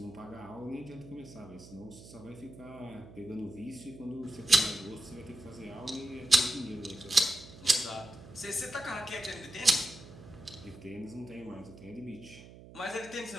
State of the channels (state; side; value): noise; right; hum, 17 dB below the sound